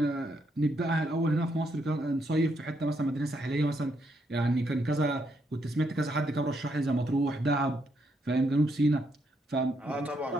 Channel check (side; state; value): both; normal; correlation 0.76